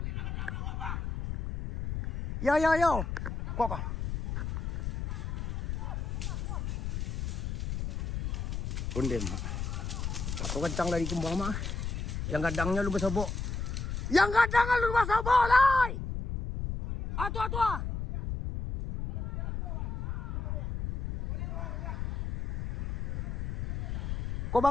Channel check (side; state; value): left; noise; rumble, 3 dB below the sound